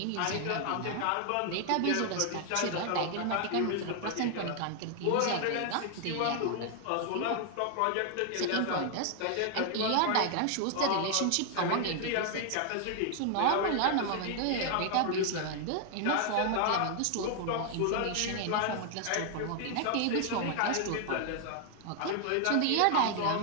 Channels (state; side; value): different; both; correlation 0.00